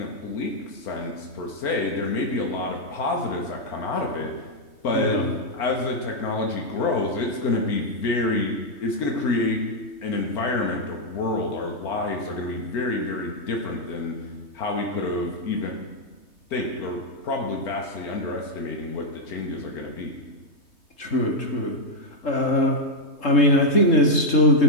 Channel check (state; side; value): late; right; 3.2 ms